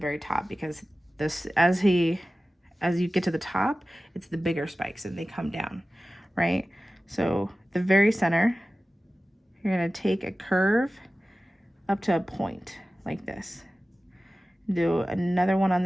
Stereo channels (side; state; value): both; normal; correlation 0.96